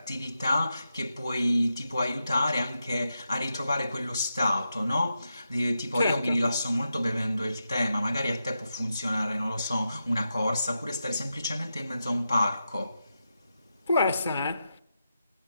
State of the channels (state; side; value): inverted; both; correlation -0.87